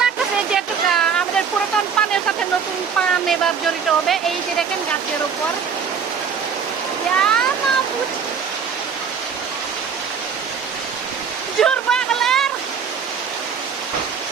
লাগতেছে যেটুকু আমাদের পুরাতন পানের সাথে নতুন পান এবার জড়িত হবে এই যে দেখেন গাছের উপর জোর বাগলার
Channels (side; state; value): left; quieter; 6.5 dB